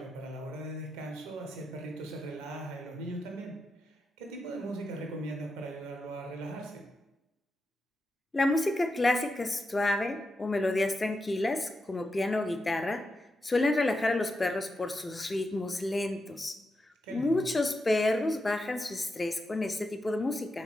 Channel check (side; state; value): both; normal; correlation 0.87